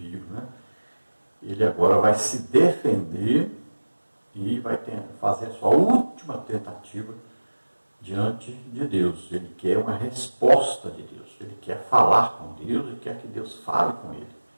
né? Ele agora vai se defender e vai fazer a sua última tentativa diante de Deus. Ele quer uma resposta de Deus. Ele quer falar com Deus e quer que Deus fale com ele.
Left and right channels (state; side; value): inverted; both; correlation -1.00